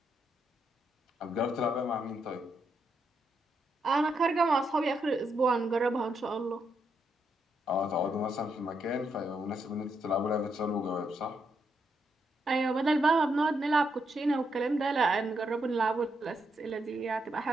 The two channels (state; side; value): normal; both; correlation 0.79